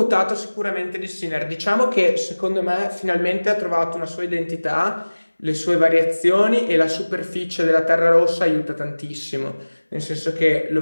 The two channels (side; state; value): both; inverted; correlation -1.00